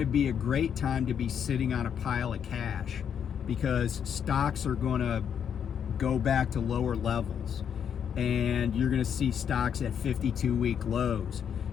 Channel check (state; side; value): quieter; right; 8.1 dB